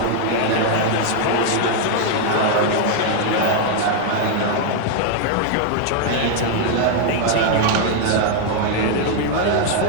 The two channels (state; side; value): different; both; correlation 0.00